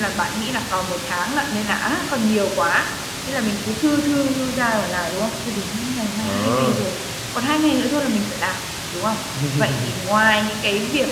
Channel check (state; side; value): identical; both; correlation 1.00